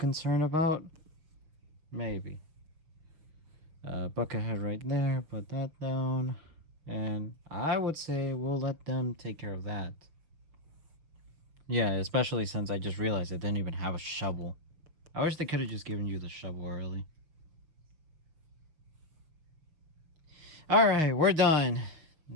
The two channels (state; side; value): late; left; 6.3 ms